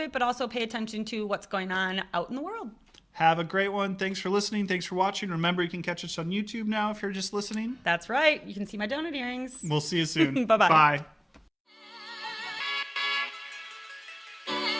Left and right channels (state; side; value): identical; both; correlation 1.00